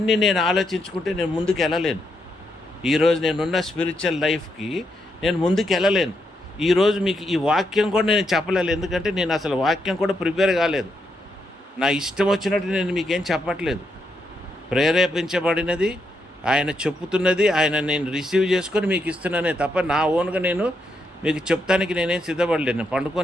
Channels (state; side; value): normal; both; correlation 0.80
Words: నేను ఆలోచించుకుంటే నేను ముందుకు వెళ్ళలేను. ఈరోజు నేనున్న స్పిరిచువల్ లైఫ్కి నేను ముందుకు వెళ్ళలేను. ఈరోజు మీకు ఈ వాక్యం కూడా నేను చెప్పలేదు, ఎందుకంటే నేను అసలు వాక్యం కూడా ప్రిపేర్ కాలేదు. నా ఇష్టం వచ్చినట్టు నేను మీకేం చెప్పట్లేదు. ప్రేరేపించబడినది, ఆయన చెప్పుతున్నది, ఆయన నేను రిసీవ్ చేసుకొని మీకు ఇస్తున్నానే తప్ప నా ఓన్గా నేను మీకు చెప్తానికి నేనేం సిద్ధపడలేను. నేను